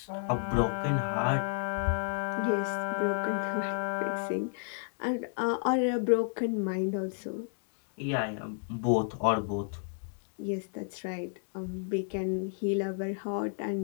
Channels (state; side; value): silent; right; 57 dB below the other